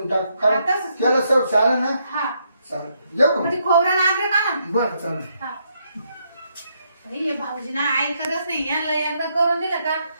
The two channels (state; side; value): inverted; both; correlation -0.77